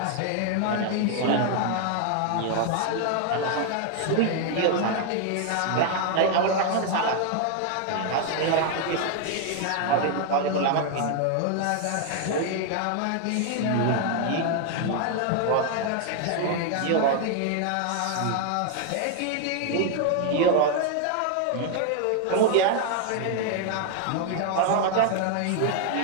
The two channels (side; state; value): both; different; correlation 0.00